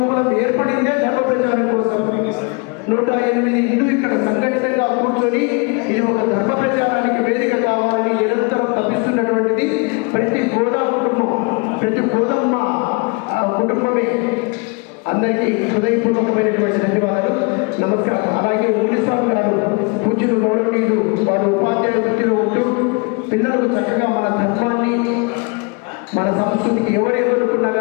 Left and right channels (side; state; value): right; quieter; 31.5 dB